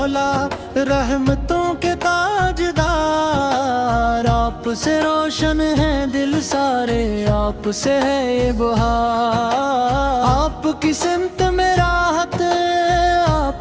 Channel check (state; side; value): identical; both; correlation 1.00